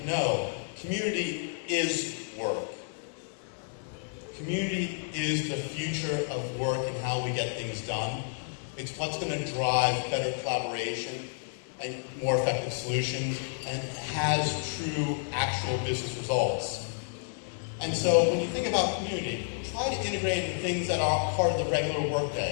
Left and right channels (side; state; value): right; silent; digital silence